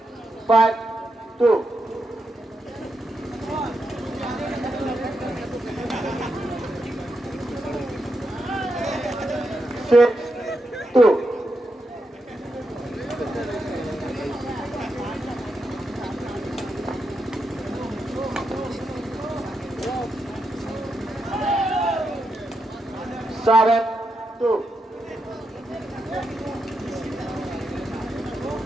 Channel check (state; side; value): normal; both; correlation 0.84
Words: 5, 2. Six, 2. Seven, 2.